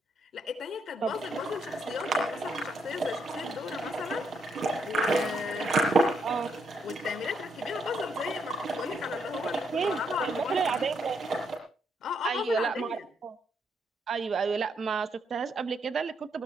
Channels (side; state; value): both; normal; correlation 0.76